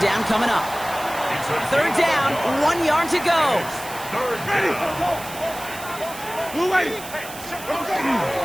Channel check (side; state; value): right; noise; hiss, 13 dB below the sound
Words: down coming up. 3rd down, 1 yard to go. Ready. Blue way.